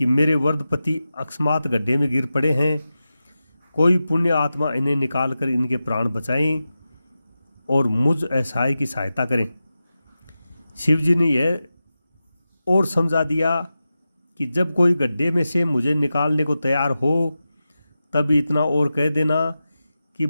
मेरे वृद्ध पति अकस्मात गड्ढे में गिर पड़े हैं, कोई पुण्य आत्मा इन्हें निकाल कर इनके प्राण बचाएं और मुझ असहाय की सहायता करें। शिवजी ने यह और समझा दिया कि जब कोई गड्ढे में से मुझे निकालने को तैयार हो, तब इतना और कह देना कि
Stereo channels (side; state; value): both; inverted; correlation -0.93